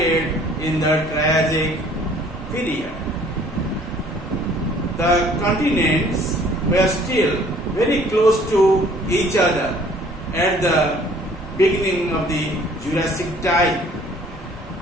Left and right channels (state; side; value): normal; both; correlation 0.56